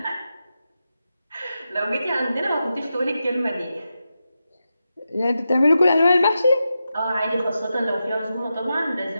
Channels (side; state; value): both; inverted; correlation -0.89